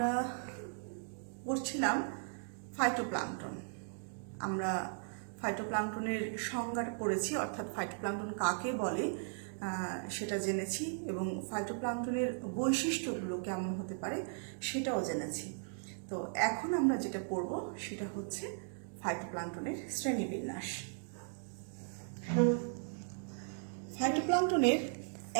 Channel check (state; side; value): silent; left; digital silence